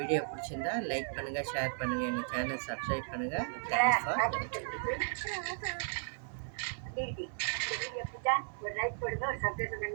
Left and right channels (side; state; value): left; silent; 54 dB below the other